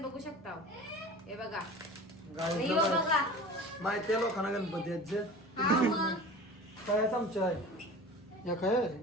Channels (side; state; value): both; normal; correlation 0.38